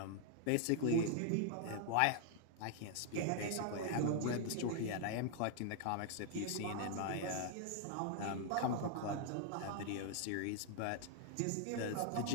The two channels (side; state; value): both; different; correlation 0.00